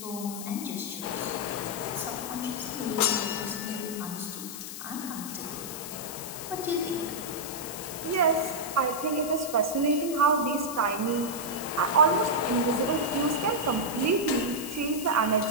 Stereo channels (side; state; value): left; noise; hiss, 9 dB below the sound